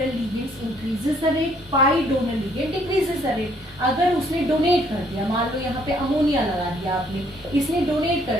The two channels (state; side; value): normal; both; correlation 0.65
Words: ligands increases the rate, pi donor ligand decreases the rate. अगर उसने डोनेट कर दिया, मान लो यहाँ पे अमोनिया लगा दिया आपने, इसने डोनेट